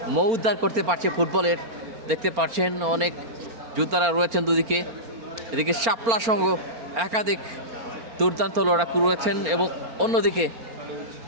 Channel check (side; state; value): left; late; 4.4 ms